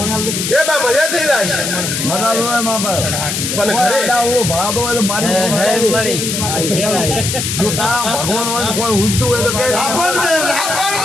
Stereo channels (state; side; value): noise; left; hiss, 2 dB below the sound